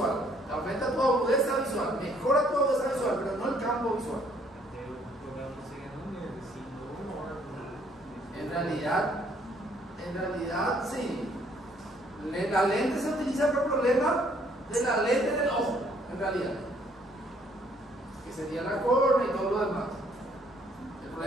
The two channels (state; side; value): normal; both; correlation 0.64